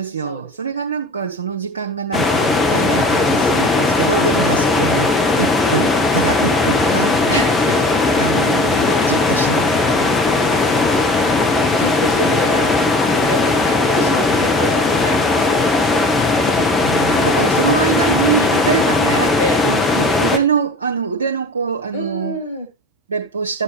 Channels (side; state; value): both; normal; correlation 0.41